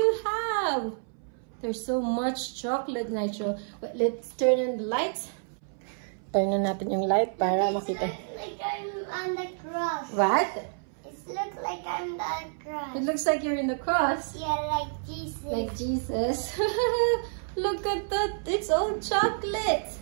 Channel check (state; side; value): silent; left; 59 dB below the other